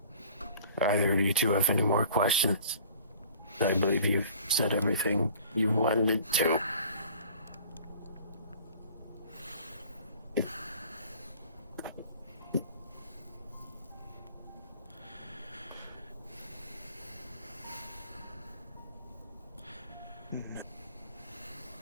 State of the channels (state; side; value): inverted; both; correlation -0.48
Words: either of you two have any more questions. I believe you've said everything you wanted to.